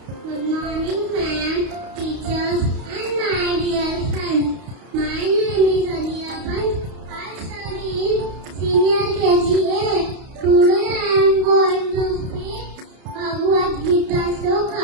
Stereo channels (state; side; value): late; left; 32 ms